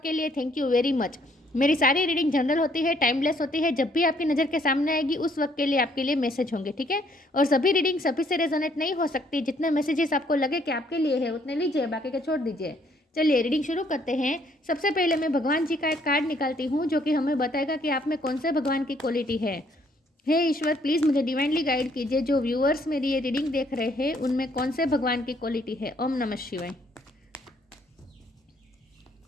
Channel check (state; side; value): normal; both; correlation 0.66